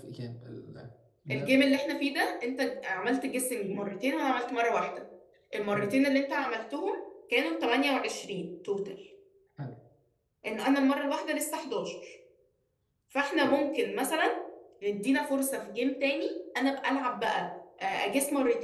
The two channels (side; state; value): both; identical; correlation 1.00